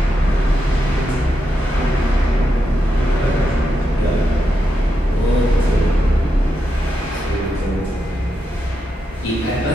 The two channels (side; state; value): both; normal; correlation 0.85